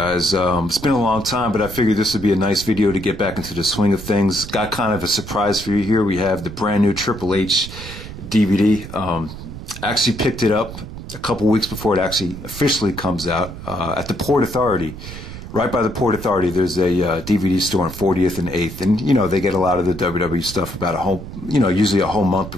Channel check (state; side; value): noise; right; rumble, 12 dB below the sound